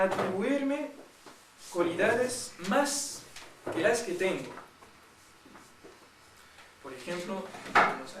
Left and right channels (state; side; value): identical; both; correlation 1.00